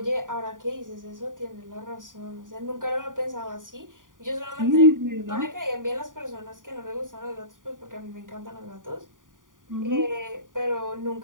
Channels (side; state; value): left; late; 0.89 ms